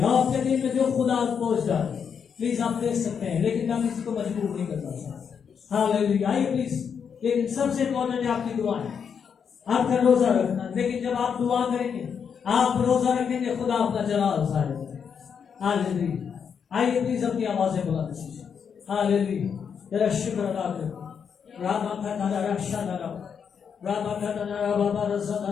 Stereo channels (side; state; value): right; quieter; 7.0 dB